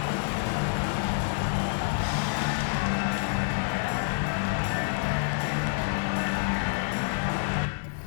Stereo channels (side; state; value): right; silent; digital silence